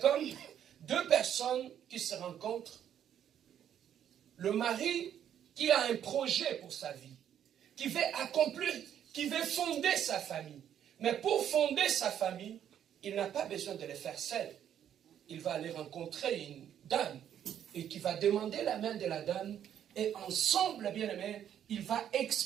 deux personnes qui se rencontrent. Le mari qui a un projet pour sa vie, qui veut accomplir, qui veut fonder sa famille. Mais pour fonder sa famille, il n'a pas besoin de le faire seul. Il va aller rencontrer une dame et qui va demander la main de la dame. Et ensemble, bien-aimés, il va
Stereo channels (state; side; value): quieter; left; 9.8 dB